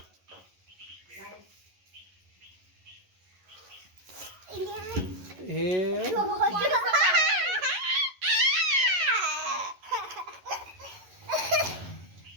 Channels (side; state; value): left; late; 11 ms